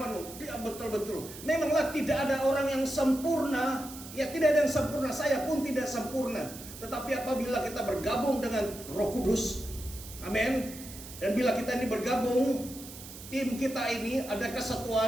Dia betul-betul. Memanglah tidak ada orang yang sempurna. Ya, tidak ada yang sempurna. Saya pun tidak sempurna. Tetapi apabila kita bergabung dengan Roh Kudus, amin. Dan bila kita ini bergabung, tim kita ini ada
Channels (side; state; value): right; noise; hiss, 14 dB below the sound